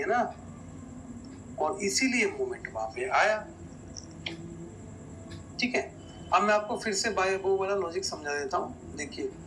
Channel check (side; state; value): both; identical; correlation 1.00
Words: ना, और इसीलिए मूवमेंट वहां पे आया, ठीक है। अब मैं आपको फिर से बाय बो वाला लॉजिक समझा देता हूँ। देखिए